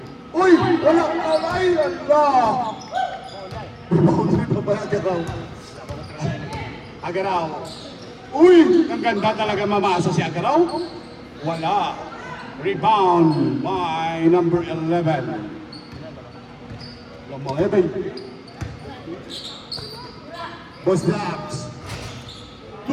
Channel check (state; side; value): identical; both; correlation 1.00